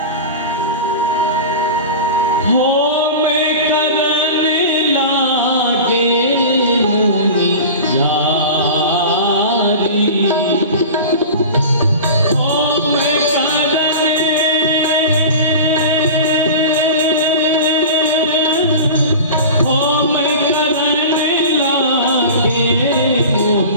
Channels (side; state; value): both; inverted; correlation -0.33